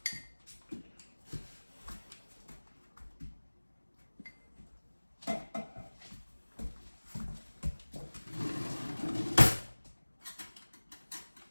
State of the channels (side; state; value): both; inverted; correlation -1.00